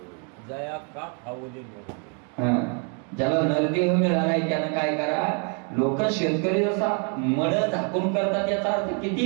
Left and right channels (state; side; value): quieter; left; 38.6 dB